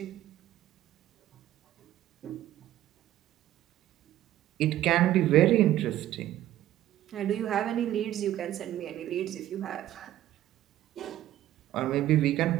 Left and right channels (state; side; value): quieter; left; 13.4 dB